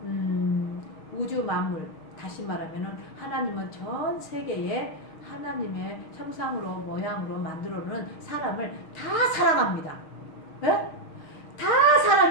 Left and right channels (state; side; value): late; right; 6.3 ms